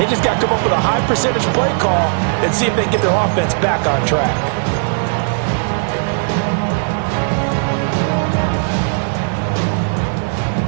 just got to come up with a high percentage play call and see if they can get their offense back on track.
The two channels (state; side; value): silent; left; digital silence